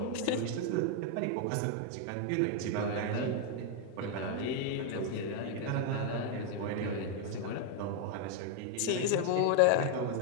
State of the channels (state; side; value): different; both; correlation 0.01